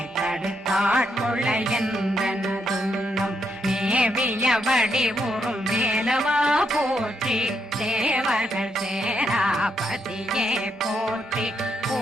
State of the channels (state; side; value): normal; both; correlation 0.79